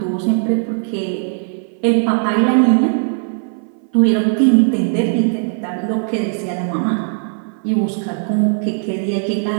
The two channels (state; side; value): silent; left; 59 dB below the other